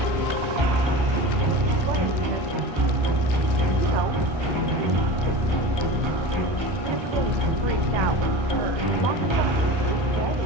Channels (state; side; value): late; left; 1.3 ms